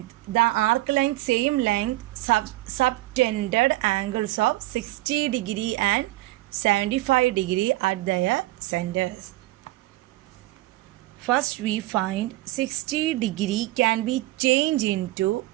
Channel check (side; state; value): left; quieter; 18.1 dB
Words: the arc length, same length, subtended angles of 60 degree and 75 degree at their centers. First we find 60 degree can be changed into